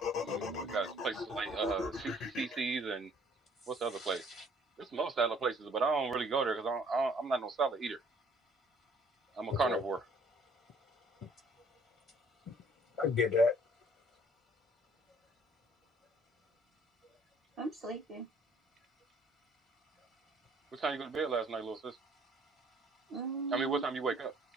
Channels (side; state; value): both; normal; correlation 0.59